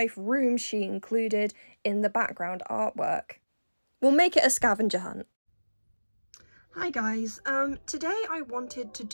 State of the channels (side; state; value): both; inverted; correlation -1.00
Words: room she included in the background artwork. We'll make it a scavenger hunt. Hi guys, today I wanted to